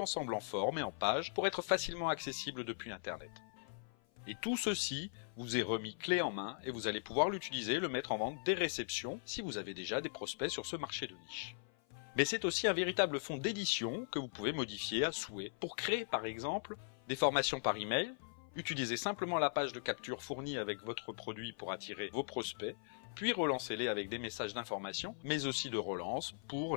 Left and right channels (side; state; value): right; silent; 51 dB below the other